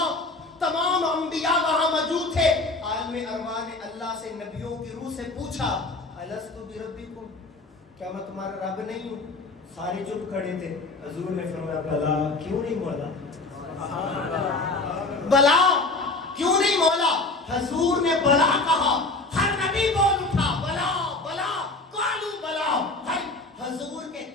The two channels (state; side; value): quieter; right; 3.3 dB